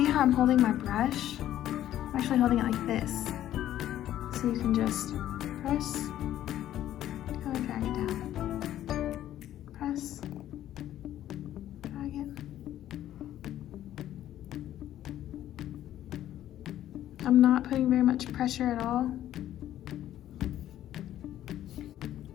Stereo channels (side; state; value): right; quieter; 12.4 dB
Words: how I'm holding my brush. I'm actually holding it like this. So you can just press, kind of drag it down. Press, drag it. I'm not putting very much pressure at all.